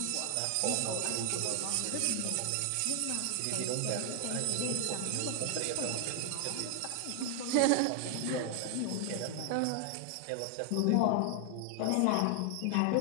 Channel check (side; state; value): both; different; correlation 0.00